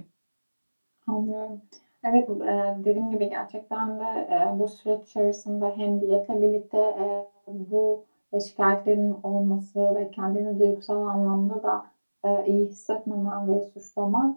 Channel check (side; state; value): both; inverted; correlation -1.00